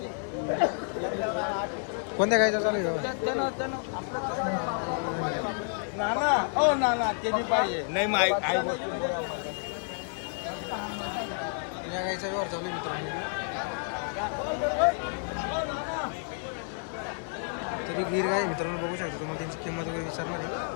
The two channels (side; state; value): right; silent; 58 dB below the other